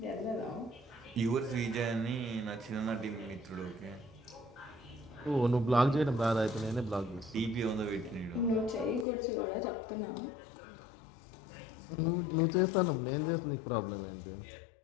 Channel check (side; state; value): right; drops out; at 9.1 s